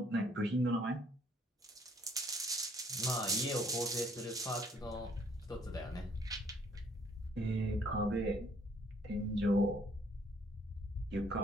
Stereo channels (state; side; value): normal; both; correlation 0.64